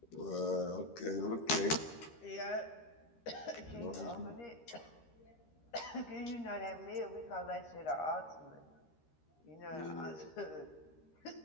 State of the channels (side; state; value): right; late; 13 ms